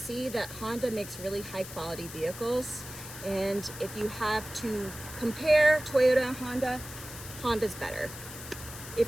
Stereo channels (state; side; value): noise; left; hiss, 12 dB below the sound